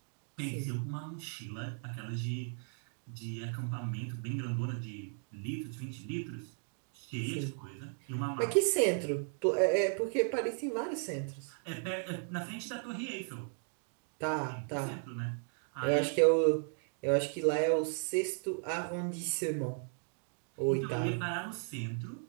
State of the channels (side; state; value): left; silent; 54 dB below the other